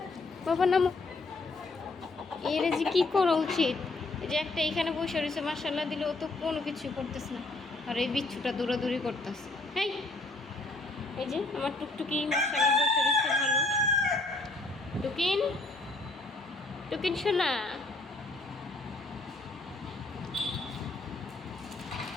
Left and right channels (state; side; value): quieter; right; 3.1 dB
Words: বাবা নামো। এর যে কি করা উচিত? এই যে একটা এইখানে বসে রয়েছে, মার্শাল্লাহ দিলে ও তো কোনো কিছু করতেছে না, আর এই বিচ্ছুটা দৌড়াদৌড়ি করতেছে। হ্যাঁ, এই যে আমার টুকটুকি মার্শাল্লাহ বসে রয়েছে ভালো। টুকিন, টুকিন শোনা,